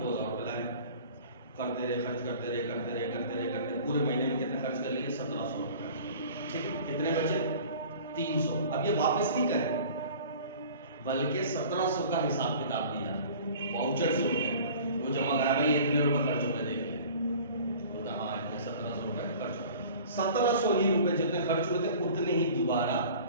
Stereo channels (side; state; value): both; inverted; correlation -0.45